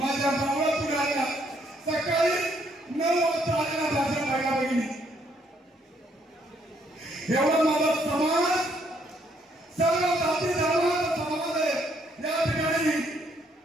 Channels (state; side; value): normal; both; correlation 0.70